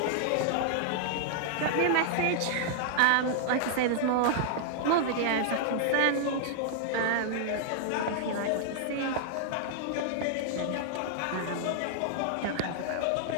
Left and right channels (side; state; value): both; different; correlation -0.01